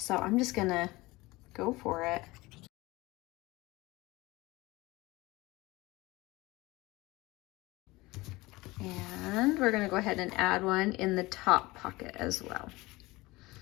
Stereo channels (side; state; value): right; quieter; 21.0 dB